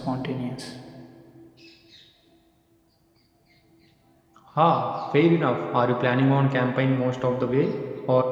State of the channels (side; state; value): both; identical; correlation 1.00